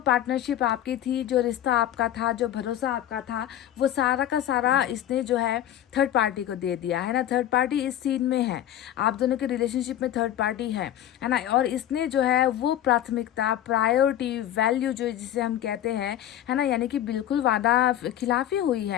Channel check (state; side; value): quieter; right; 11.9 dB